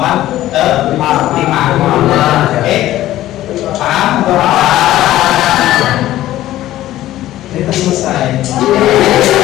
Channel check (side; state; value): right; quieter; 14.4 dB